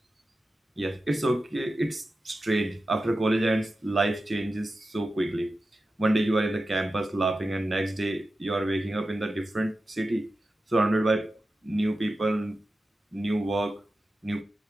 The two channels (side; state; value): both; normal; correlation 0.93